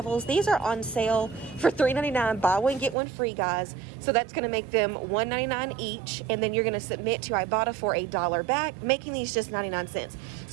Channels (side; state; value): left; drops out; at 3.0 s